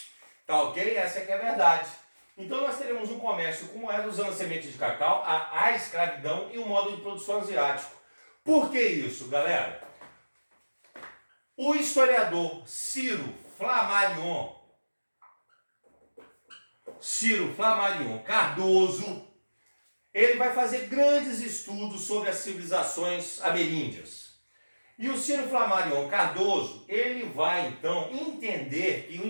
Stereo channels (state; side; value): inverted; both; correlation -1.00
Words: Tá ok? Essa é que é a verdade. Então nós teremos um comércio com moeda usando a semente de cacau, a escravidão e o modo de produção asiático. Por que isso, galera? O historiador Ciro Flammarion Cardoso, ele vai fazer grandes estudos sobre as civilizações ameríndias. E o Ciro Flammarion Cardoso, ele vai então entender que o